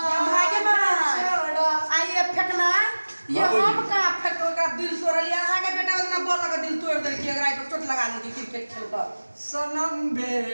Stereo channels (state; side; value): inverted; both; correlation -1.00